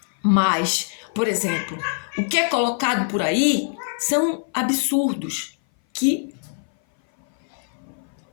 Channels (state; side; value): silent; right; 59 dB below the other